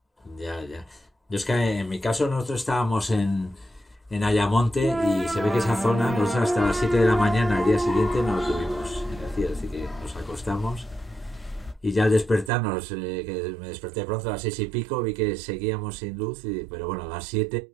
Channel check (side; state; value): left; drops out; at 12.5 s